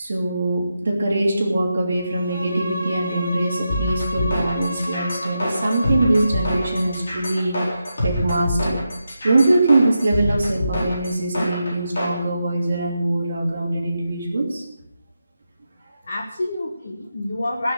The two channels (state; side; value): inverted; both; correlation -0.87